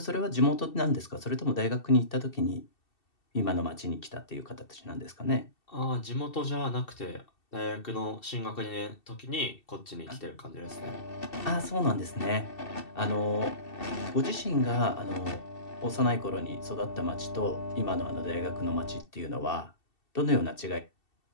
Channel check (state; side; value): late; right; 2.7 ms